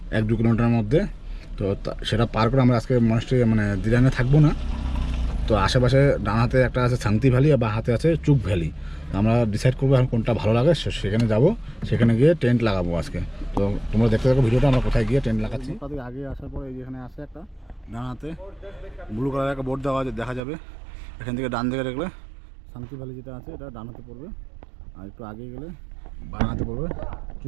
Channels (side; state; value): left; drops out; at 20.4 s